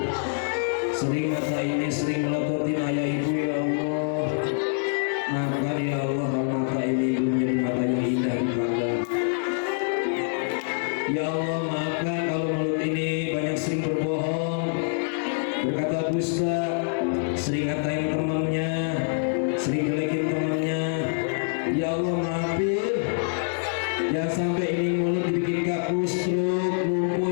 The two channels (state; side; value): silent; right; 61 dB below the other